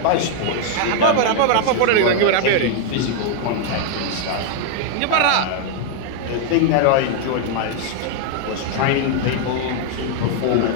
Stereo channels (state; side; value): different; both; correlation 0.00